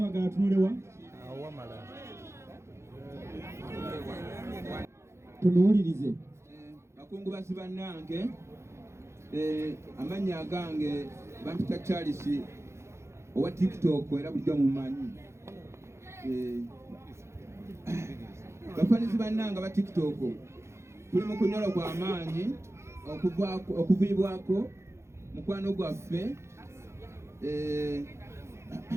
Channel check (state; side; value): late; left; 0.13 ms